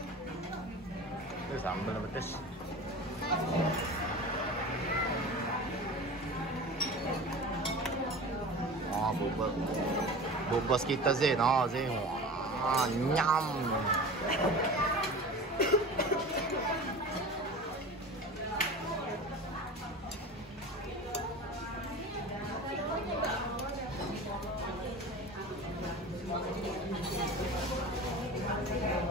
Itu sambal pedes. Oh, bubos kita Zain. Oh, Zain. Wah, nyam.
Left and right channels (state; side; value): normal; both; correlation 0.35